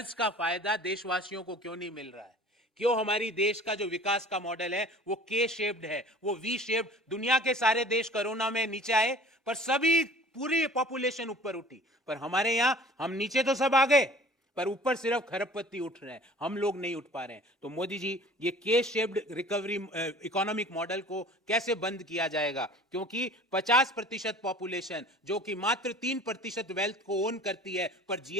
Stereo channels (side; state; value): both; normal; correlation 0.46